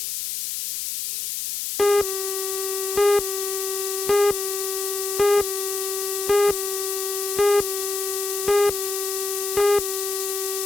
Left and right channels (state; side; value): noise; left; hiss, 3 dB below the sound